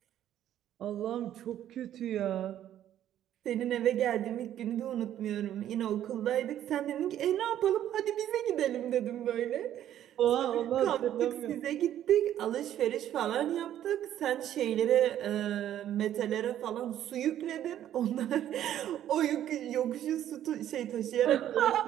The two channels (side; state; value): left; quieter; 11.4 dB